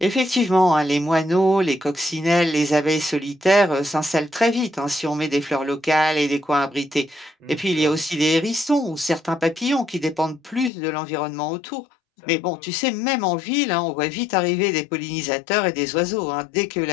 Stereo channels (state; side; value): drops out; right; at 10.7 s